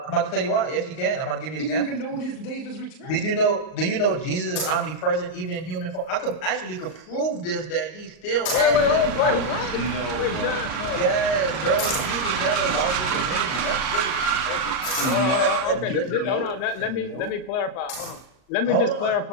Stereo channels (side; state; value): right; late; 39 ms